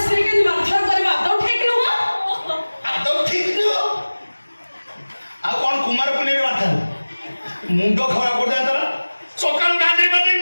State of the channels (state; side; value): inverted; both; correlation -1.00